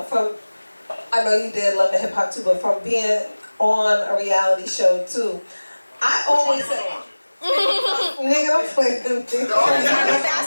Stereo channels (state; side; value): inverted; both; correlation -1.00